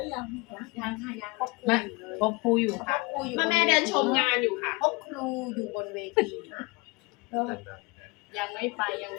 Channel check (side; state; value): right; quieter; 26.6 dB